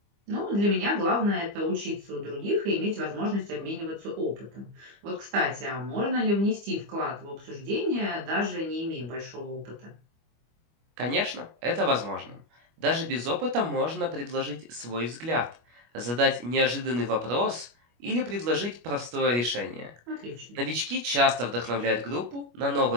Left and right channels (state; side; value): late; left; 25 ms